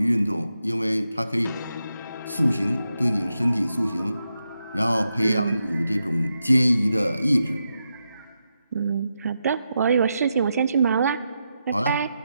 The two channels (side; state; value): both; inverted; correlation -0.86